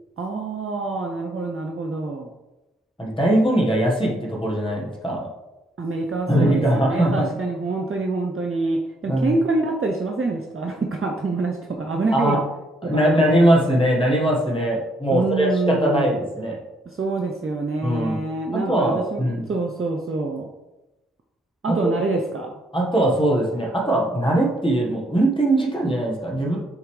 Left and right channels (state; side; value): normal; both; correlation 0.71